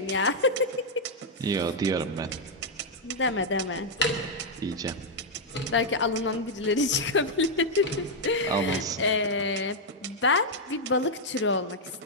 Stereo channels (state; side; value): normal; both; correlation -0.02